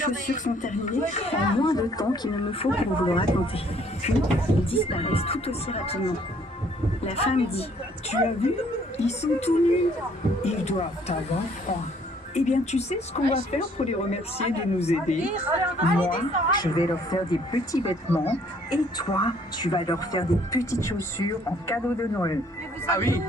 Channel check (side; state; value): both; normal; correlation 0.62